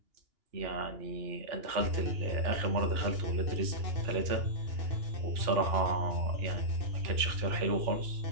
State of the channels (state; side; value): late; left; 2.8 ms